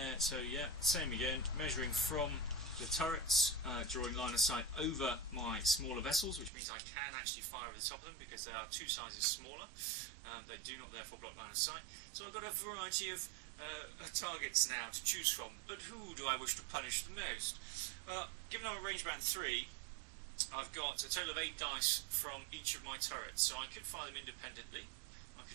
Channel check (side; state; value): left; drops out; at 6.5 s